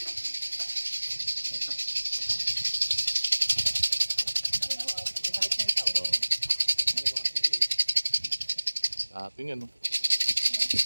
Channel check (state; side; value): inverted; both; correlation -1.00